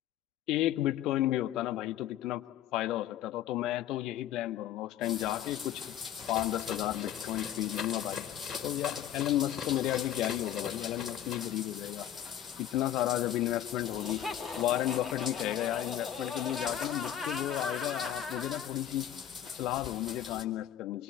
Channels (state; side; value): quieter; right; 11.3 dB